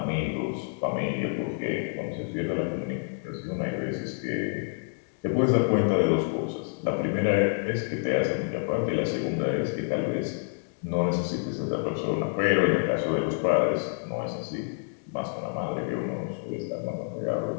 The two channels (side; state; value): right; silent; 59 dB below the other